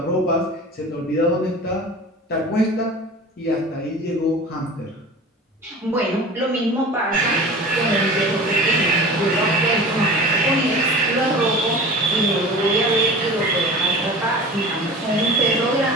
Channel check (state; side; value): normal; both; correlation 0.38